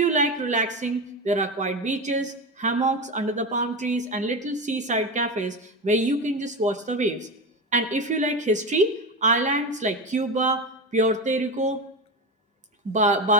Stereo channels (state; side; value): normal; both; correlation 0.20